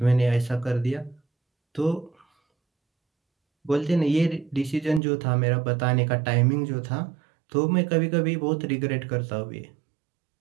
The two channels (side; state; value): left; drops out; at 5.0 s